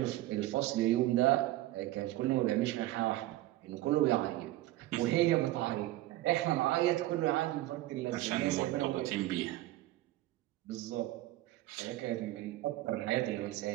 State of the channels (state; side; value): quieter; left; 16.4 dB